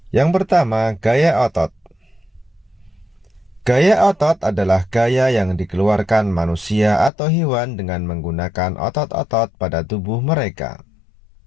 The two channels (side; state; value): right; drops out; at 7.1 s